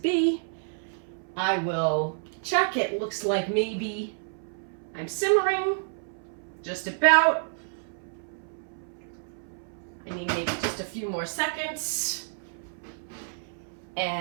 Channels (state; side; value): silent; left; 58 dB below the other